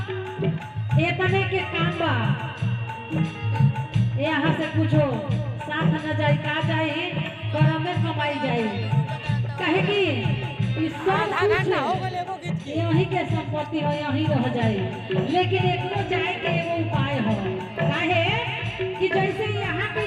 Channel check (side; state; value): both; identical; correlation 1.00